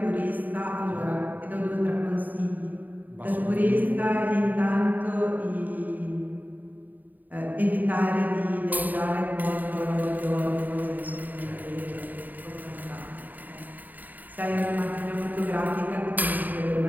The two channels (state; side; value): late; left; 0.085 ms